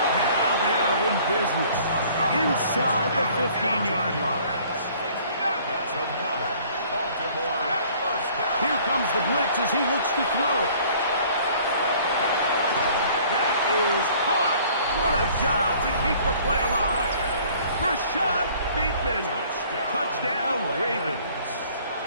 Now they are in business inside the 15-yard line. That's another Baltimore first down. Here comes the blitz as he looks to throw. That is caught. What a job to keep the play alive. Rashad Bateman. Touchdown, Ravens.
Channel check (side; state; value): both; inverted; correlation -0.54